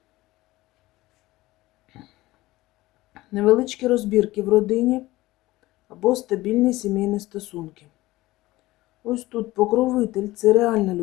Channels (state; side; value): quieter; right; 18.2 dB